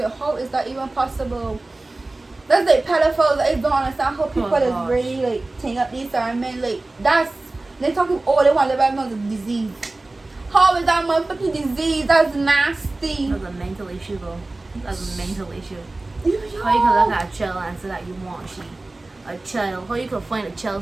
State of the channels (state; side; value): quieter; left; 3.0 dB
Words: how is that even possible? That's like pedophiles. I don't understand how people is really like taking up these certain men. Like that's they talking. Oh, they want to live out a disease. How is that motherfucking disease? That's nasty. That's a mental issue, though. That's a mental issue. Yo. How you can look at a child and say that you want a child? How you can find a